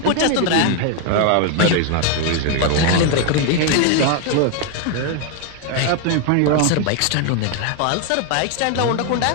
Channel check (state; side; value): different; both; correlation 0.01